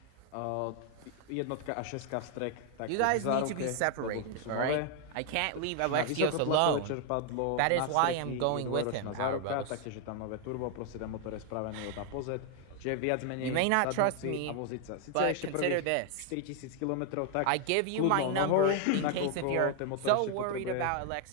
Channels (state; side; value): different; both; correlation 0.00